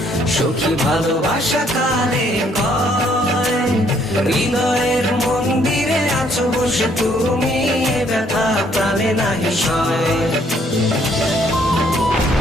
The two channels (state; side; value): normal; both; correlation 0.66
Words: সুখী ভালোবাসা কারে কয়। হৃদয়ের মন্দিরে আছো বসে তুমি, এ ব্যথা প্রাণে নাই সয়।